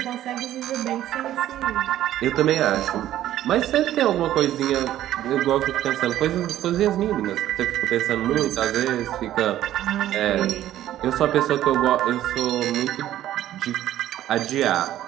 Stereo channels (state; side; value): quieter; left; 12.8 dB